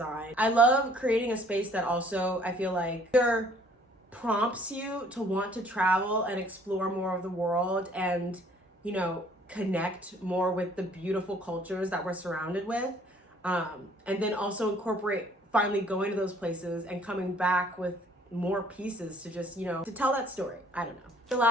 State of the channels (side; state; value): both; normal; correlation 0.58